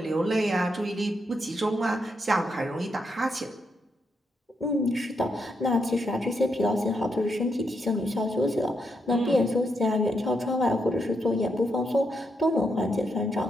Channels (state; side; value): normal; both; correlation 0.80